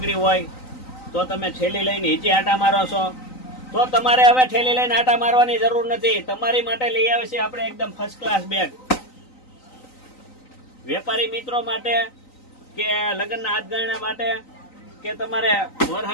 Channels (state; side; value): late; right; 3.9 ms